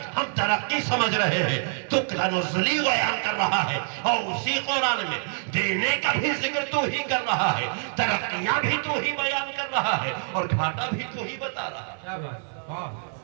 ہم ترقی سمجھ رہے ہیں, تو تنزلی بیان کر رہا ہے, اور اسی قرآن میں دینے کا بھی ذکر تو ہی کر رہا ہے, ترقیاں بھی تو ہی بیان کر رہا ہے, اور گھاٹا بھی تو ہی بتا رہا ہے.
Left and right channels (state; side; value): silent; left; 57 dB below the other